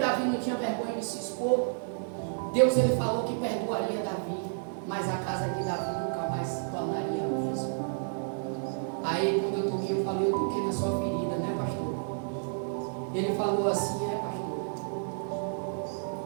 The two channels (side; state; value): left; silent; digital silence